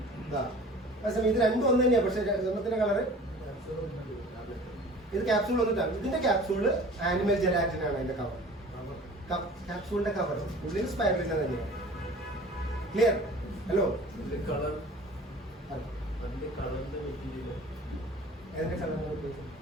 ഇതാ അതേസമയം ഇത് രണ്ടും ഒന്ന് തന്നെയാണ്, പക്ഷെ ഒന്നത്തിന്റെ കളറ് ഇത് ക്യാപ്സൂൾ വന്നിട്ടാണ്. ഇതിന്റെ ക്യാപ്സൂള് ആനിമൽ ജെലാറ്റിൻ ആണ്. അതിന്റെ കവർ, ക്യാപ്സൂളിന്റെ കവർ ഉള്ളിൽ സ്പൈറുലിൻ തന്നെയാണ്. ക്ലിയർ? ഹലോ, ഇതിന്റെ കളർ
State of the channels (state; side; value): normal; both; correlation 0.44